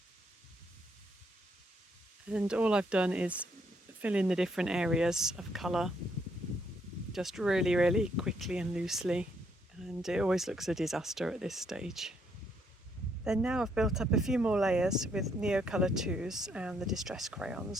And all I've done is fill in the different areas of colour, just really, really quickly and loosely. And it always looks a disaster at this stage. Then now I've built up a few more layers with Neocolor IIs and the distress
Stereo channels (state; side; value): normal; both; correlation 0.72